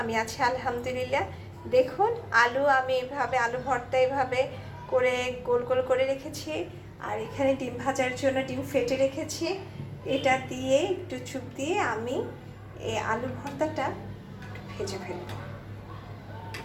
আছি আলহামদুলিল্লাহ। দেখুন, আমি এভাবে আলু ভর্তা এভাবে করে গোল গোল করে রেখেছি। আর এখানে ডিম ভাজার জন্য ডিম ফেটে রেখেছি। এটা দিয়ে একটু চুপ দিয়ে আমি এই আলু ভর্তাটা একটু ভেজে ফেলব।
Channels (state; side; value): identical; both; correlation 1.00